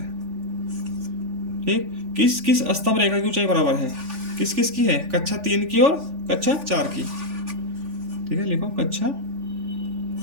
ठीक। किस किस स्तंभ रेखा की ऊंचाई बराबर है? किस किस की है? कक्षा 3 की और कक्षा 4 की। ठीक है, लिखो कक्षा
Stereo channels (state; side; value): late; left; 3.4 ms